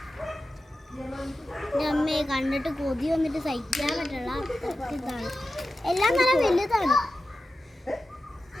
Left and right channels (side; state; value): both; normal; correlation 0.92